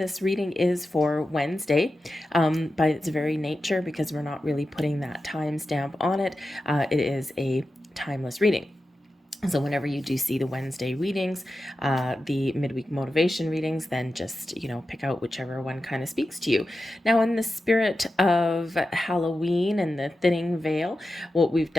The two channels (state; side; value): normal; both; correlation 0.92